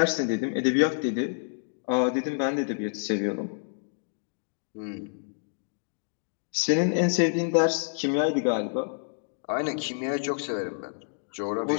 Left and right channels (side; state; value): right; silent; digital silence